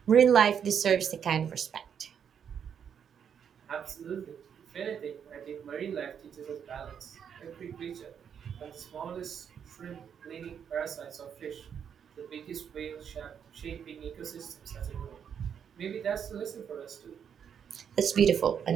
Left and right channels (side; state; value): left; quieter; 7.9 dB